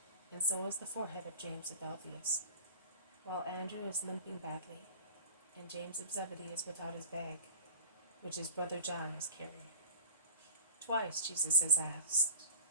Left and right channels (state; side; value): inverted; both; correlation -0.41